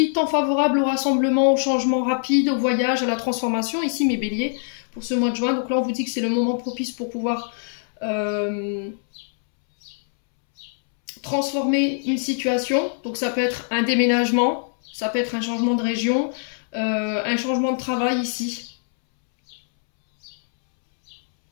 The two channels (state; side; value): silent; right; 63 dB below the other